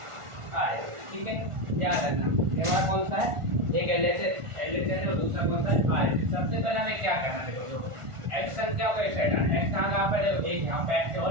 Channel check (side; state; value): left; late; 1.4 ms